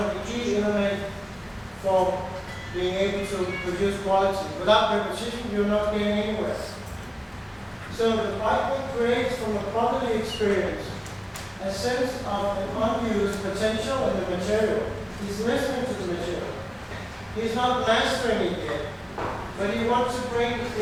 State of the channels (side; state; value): both; identical; correlation 1.00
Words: the key elements for being able to produce quality. Without repetition, you're not getting anywhere. So the piping creates from a properly experience a sense of an unused potential in the material. He's listening to the material. He's not mastering it yet, but he wants to bring